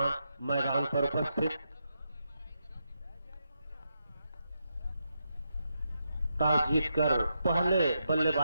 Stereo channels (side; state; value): both; inverted; correlation -0.83